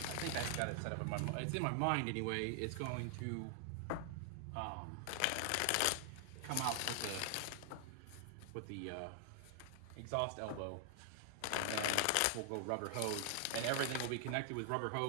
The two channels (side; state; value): both; different; correlation 0.00